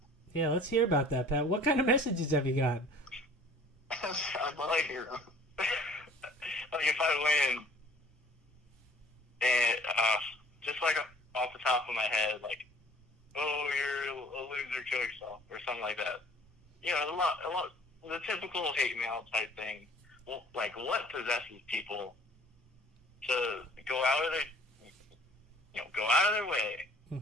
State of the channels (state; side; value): normal; both; correlation 0.52